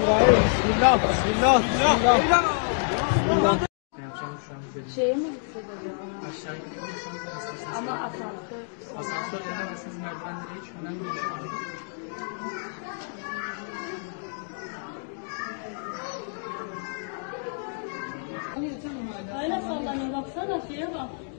Bismillah. Bismillah. Bismillah. Bismillah. Şeye mi gitsek acaba? Aşağıya gidiyorsanız Ama asansör. asansör denemezsiniz, merdivenlere hiç önemli değil şu anda. Öyle sallanıyor, baksana şeye bak.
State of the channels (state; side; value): silent; right; digital silence